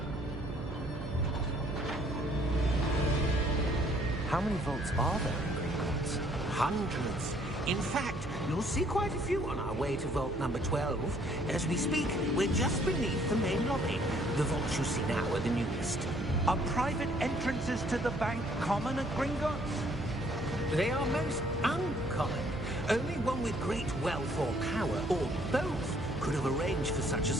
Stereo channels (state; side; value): noise; right; hum, 10 dB below the sound